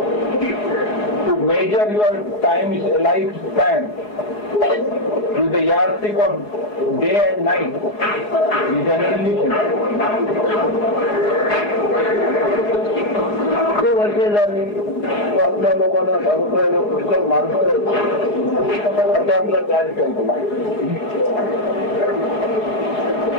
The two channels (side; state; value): right; late; 4.8 ms